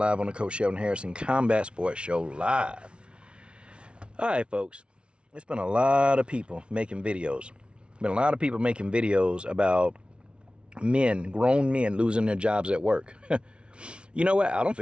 the Coach Shelton Harrison Combat Sports Show live. All right, folks. It's been a lot of people making videos. Been a lot of people making videos about men, grown men, losing their jobs at work. You know what? I don't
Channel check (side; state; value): left; late; 0.058 ms